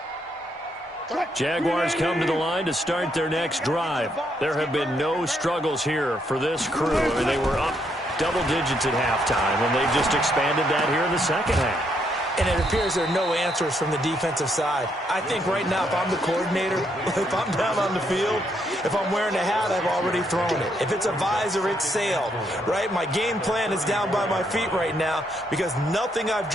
Jaguars come to the line to start their next drive. There have been no struggles here for this crew. I mean, they were up double digits at halftime, and they've just expanded that here in the second half. And it appears there are no answers from the defensive side. I think right now, if I'm the coordinator, if I'm down on the field, if I'm wearing a hat, I've already thrown it. If it's a visor, it's sailed, right? My game plan is down by my feet right now because nothing I've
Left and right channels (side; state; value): both; normal; correlation 0.75